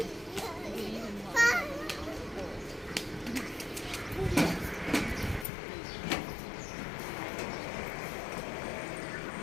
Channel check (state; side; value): drops out; right; at 5.5 s